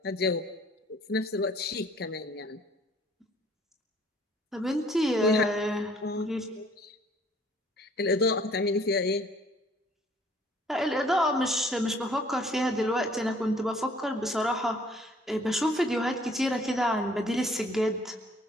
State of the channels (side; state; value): both; normal; correlation 0.58